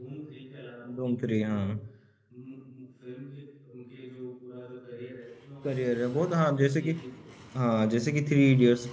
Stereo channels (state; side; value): identical; both; correlation 1.00